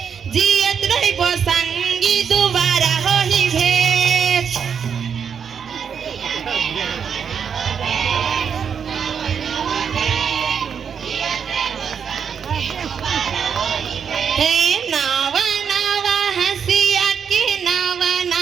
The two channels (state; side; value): quieter; left; 7.1 dB